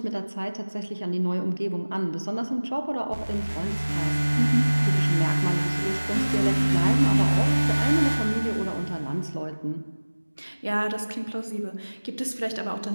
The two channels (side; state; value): both; inverted; correlation -1.00